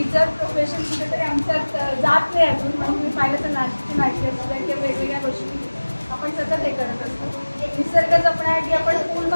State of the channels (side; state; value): both; inverted; correlation -1.00